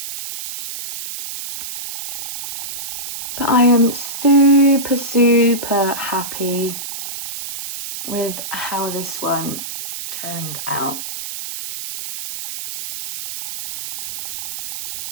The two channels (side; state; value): right; noise; hiss, 7 dB below the sound